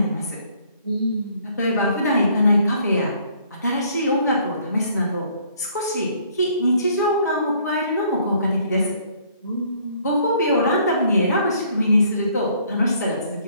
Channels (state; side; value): inverted; both; correlation -0.62